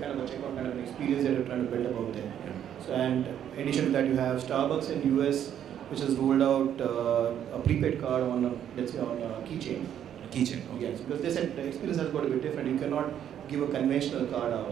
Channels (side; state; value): left; quieter; 9.9 dB